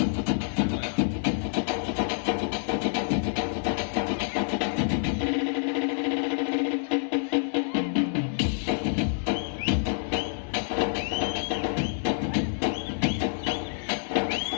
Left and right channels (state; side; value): silent; right; 59 dB below the other